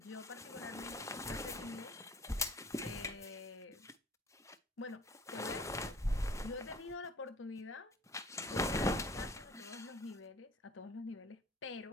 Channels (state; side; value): normal; both; correlation 0.51